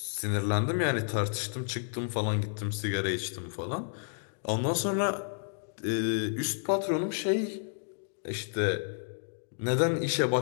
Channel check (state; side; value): silent; right; digital silence